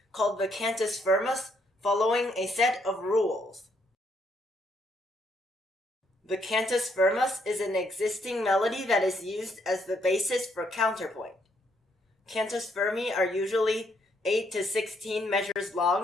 called the cantus firmus, following a set of rules. The cantus firmus is an existing melody that is used as the basis for counterpoint. Cantus firmi are usually 8 to 16 measures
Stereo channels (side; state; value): both; normal; correlation 0.73